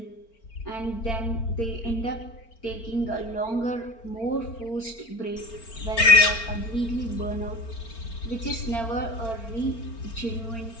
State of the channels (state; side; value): late; right; 4.4 ms